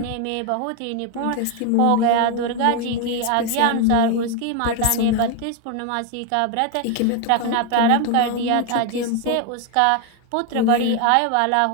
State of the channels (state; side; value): different; both; correlation 0.01